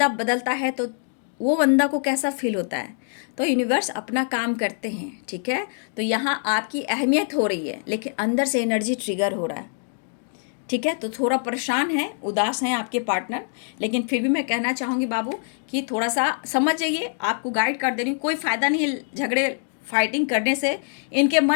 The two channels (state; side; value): silent; right; 62 dB below the other